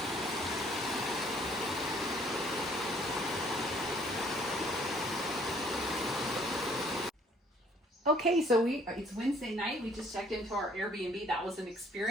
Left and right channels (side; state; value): both; normal; correlation 0.60